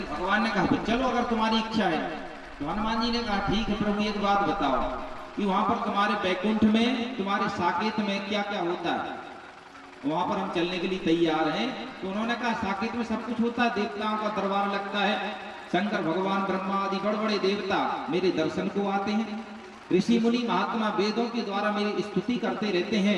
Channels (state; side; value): identical; both; correlation 1.00